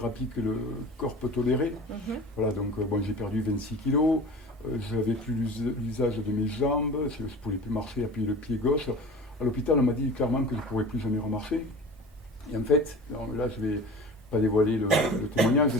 que le corps peut tolérer. Voilà, donc j'ai perdu 26 kilos. Je n'avais plus l'usage de mes jambes. Je ne pouvais plus marcher, appuyer le pied gauche. À l'hôpital, on m'a dit clairement que je ne pourrais plus jamais remarcher. Et en fait, là, je ne vais pas dévoiler le témoignage,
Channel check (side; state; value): both; normal; correlation 0.38